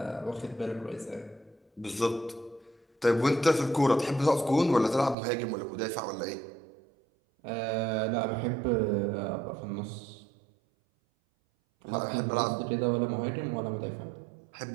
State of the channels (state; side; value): drops out; left; at 5.2 s